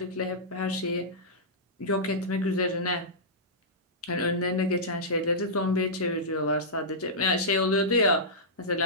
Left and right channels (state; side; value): normal; both; correlation -0.14